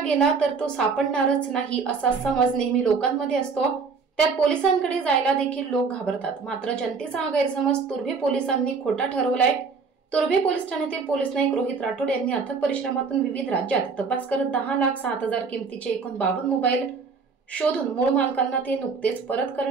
गेला तर तो सापडणारच नाही असा समज नेहमी लोकांमध्ये असतो। त्यात पोलिसांकडे जायला देखील लोक घाबरतात। मात्र जनतेचा हा गैरसमज तुर्भे पोलिसांनी खोटा ठरवलाय। तुर्भे पोलीस ठाण्यातील पोलीस नाईक रोहित राठोड यांनी अथक परिश्रमातून विविध राज्यात तपास करत 10,07,000 किमतीचे एकूण 52 मोबाईल शोधून मूळ मालकांना ते नुकतेच परत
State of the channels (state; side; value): quieter; left; 5.0 dB